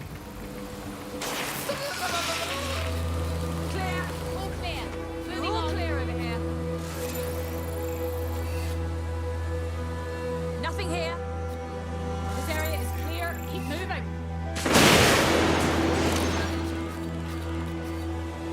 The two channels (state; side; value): identical; both; correlation 1.00